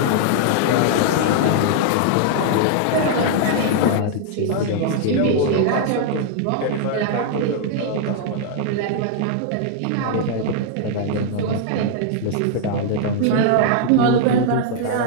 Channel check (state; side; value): different; both; correlation -0.01